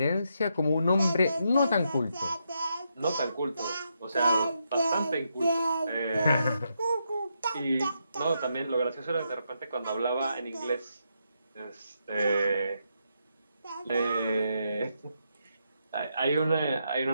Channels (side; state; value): both; inverted; correlation -0.80